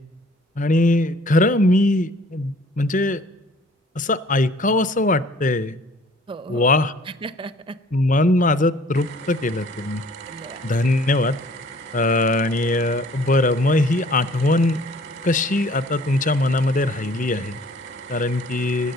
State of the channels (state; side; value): normal; both; correlation 0.54